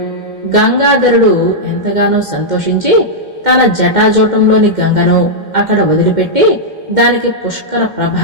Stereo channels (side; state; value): left; late; 2.1 ms